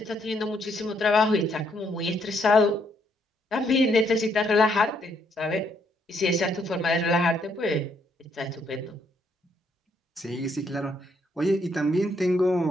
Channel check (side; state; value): both; normal; correlation 0.72